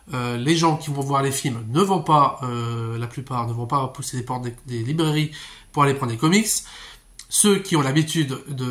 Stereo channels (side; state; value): both; identical; correlation 1.00